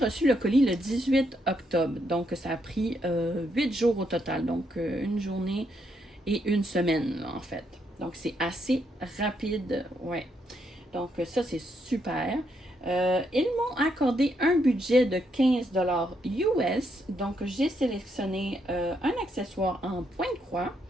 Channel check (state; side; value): normal; both; correlation 0.77